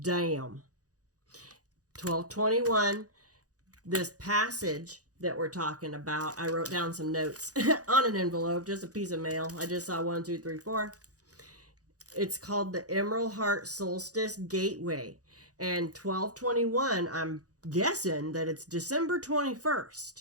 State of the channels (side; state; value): left; late; 0.67 ms